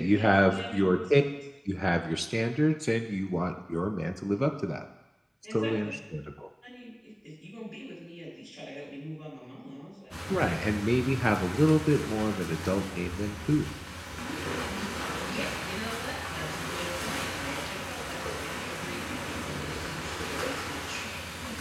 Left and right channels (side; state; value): both; identical; correlation 1.00